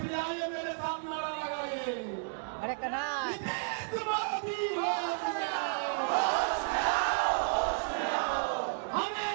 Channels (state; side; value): silent; left; digital silence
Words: आइए मेरे सामने नारा लगाइए, अरे कन्हा हमें